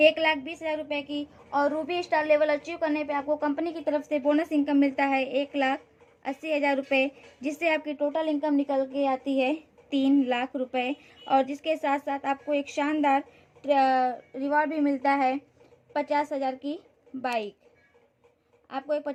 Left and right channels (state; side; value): identical; both; correlation 1.00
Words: रुपए की। और रूबी स्टार लेवल अचीव करने पे आपको कंपनी की तरफ से बोनस इनकम मिलता है 1,80,000 रुपये, जिससे आपकी टोटल इनकम निकल के आती है 3 लाख रुपए। और जिसके साथ साथ आपको एक शानदार रिवॉर्ड भी मिलता है 50,000 की बाइक। आपको एक